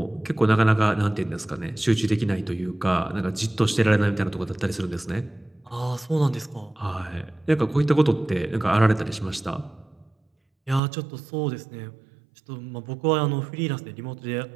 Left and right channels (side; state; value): left; drops out; at 10.8 s